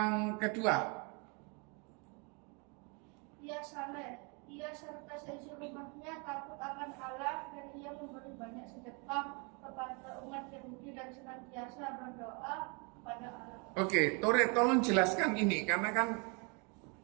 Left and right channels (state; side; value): quieter; left; 33.1 dB